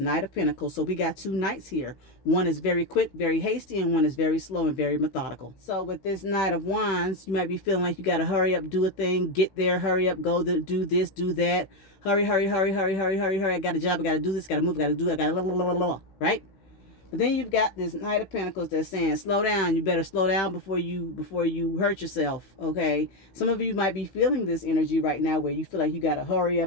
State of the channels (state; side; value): late; right; 16 ms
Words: of Pentacles. So we got 2 knights here. One is very quick, very hasty, and one is very slow and very methodical. So with this Knight of Wands, you might be feeling like you got to hurry up, do a thing, get there, hurry up, go do this, do that. Hurry, hurry, hurry, hurry, hurry, hurry, hurry. I got a job, I got to do this, got to move, got to do it, got to right? But then you've got this Knight of Pentacles that's saying, slow down. You better slow down before you hurt yourself, okay? Some of you might be feeling this energy right now where you feel like you got to hurry